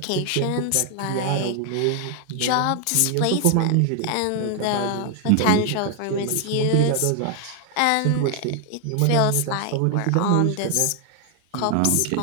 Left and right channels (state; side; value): different; both; correlation 0.00